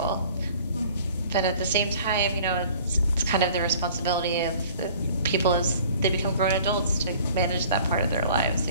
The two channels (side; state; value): both; inverted; correlation -0.50